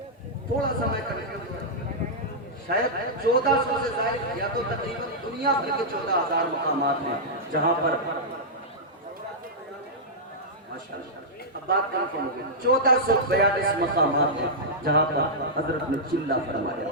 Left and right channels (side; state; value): both; normal; correlation -0.10